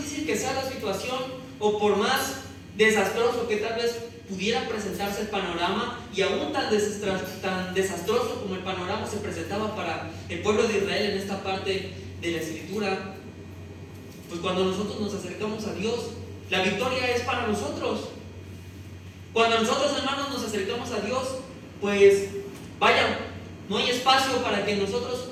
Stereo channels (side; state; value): both; identical; correlation 1.00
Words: que sea la situación, o por más desastroso que tal vez pudiera presentarse el panorama, y aún tan desastroso como el panorama se presentaba para el pueblo de Israel en esta parte de la escritura, pues cuando nosotros nos acercamos a Dios, la victoria es para nosotros. Cuando nosotros, hermanos, nos acercamos a Dios, pues vaya, no hay espacio para que nosotros